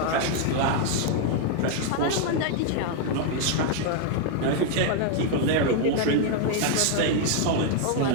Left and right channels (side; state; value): both; different; correlation 0.00